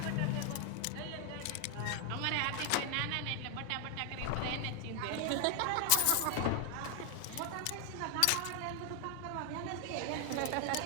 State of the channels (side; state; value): both; different; correlation 0.00